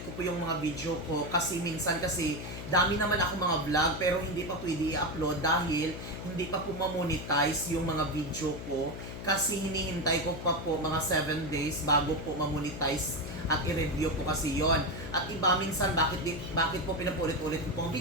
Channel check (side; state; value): left; noise; hum, 9 dB below the sound